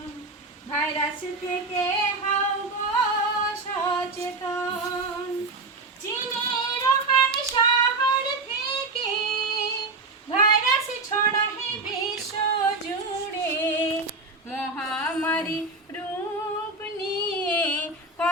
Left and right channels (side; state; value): left; quieter; 3.4 dB